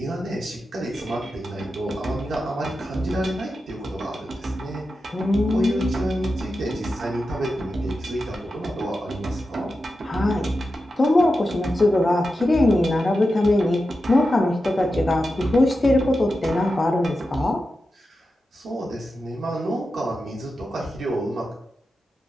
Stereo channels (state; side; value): normal; both; correlation 0.91